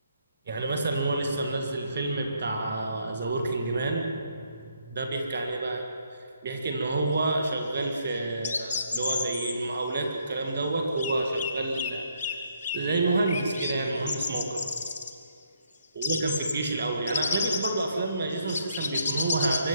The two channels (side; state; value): both; inverted; correlation -0.72